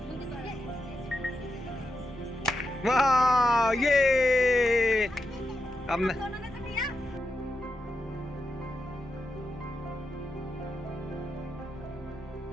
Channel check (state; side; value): normal; both; correlation 0.87